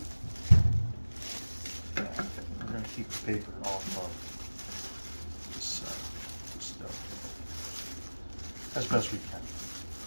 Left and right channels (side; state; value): both; inverted; correlation -1.00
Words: Yeah, we're going to keep the paper off of this dough as best we can.